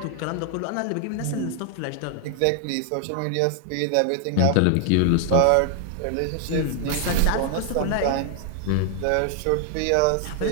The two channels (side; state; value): both; different; correlation 0.00